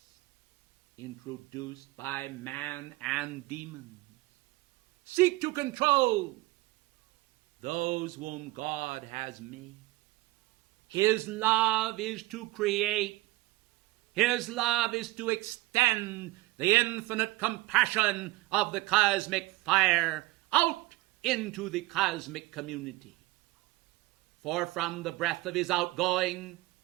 introduced by man and demon, seek to control those whom God has made. His love is to create. His love is to extend the infinite compassion of the cosmic fire out into the cosmic community. For from the breath of his outgoing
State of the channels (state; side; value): quieter; left; 20.1 dB